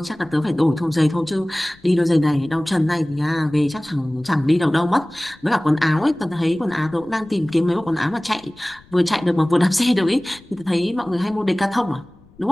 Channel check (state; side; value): noise; left; rumble, 27 dB below the sound